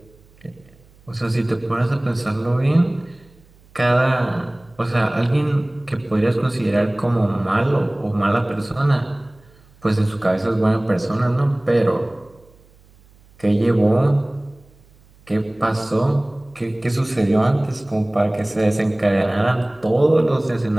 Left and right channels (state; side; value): noise; right; hum, 29 dB below the sound